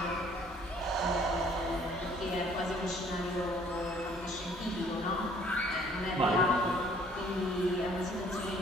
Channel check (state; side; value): normal; both; correlation 0.58